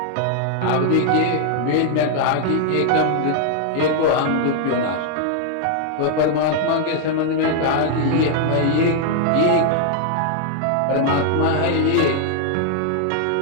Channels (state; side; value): different; both; correlation 0.00